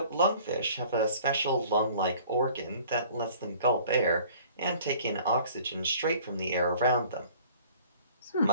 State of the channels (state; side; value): inverted; both; correlation -0.51